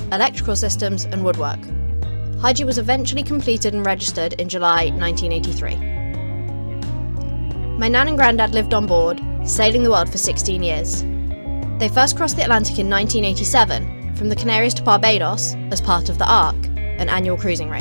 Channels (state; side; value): inverted; both; correlation -1.00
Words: electrical systems and woodwork. Haji was eventually completed and registered in July 1983. My nan and granddad lived on board, sailing the world for 16 years. They first crossed the Atlantic in 1987, from the Canaries to Barbados, as part of the Ark, an annual cruising